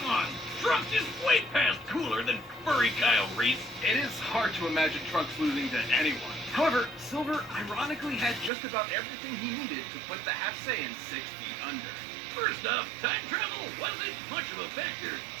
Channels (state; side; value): drops out; left; at 8.5 s